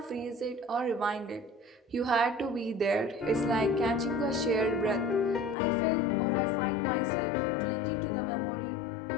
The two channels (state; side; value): drops out; right; at 5.6 s